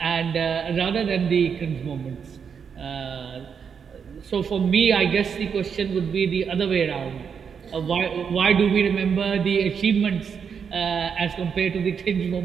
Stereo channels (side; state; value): left; quieter; 6.8 dB